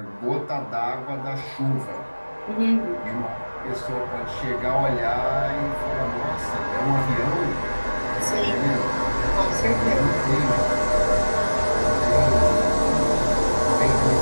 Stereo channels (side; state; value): both; inverted; correlation -1.00